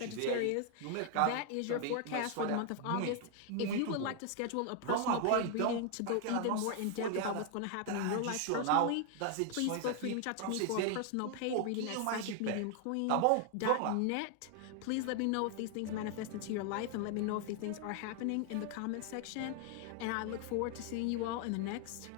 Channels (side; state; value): both; different; correlation 0.00